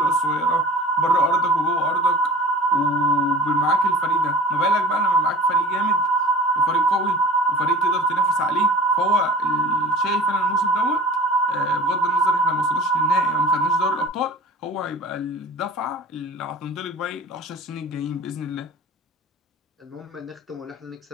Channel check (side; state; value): both; normal; correlation 0.41